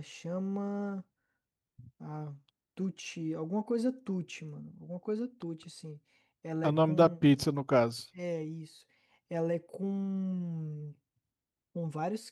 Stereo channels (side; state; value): both; identical; correlation 1.00